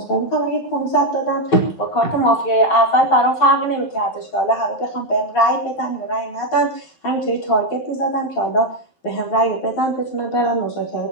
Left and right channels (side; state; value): right; late; 12 ms